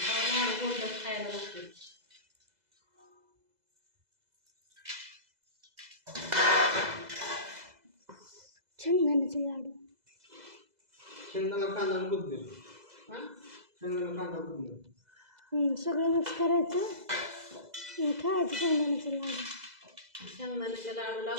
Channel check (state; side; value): late; left; 2.0 ms